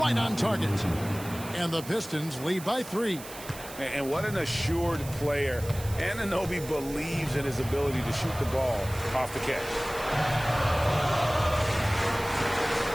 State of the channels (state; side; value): noise; right; hiss, 14 dB below the sound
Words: on target. And the Pistons lead by 3. And what an assured player. Anunoby believes in his ability to shoot the ball off the catch.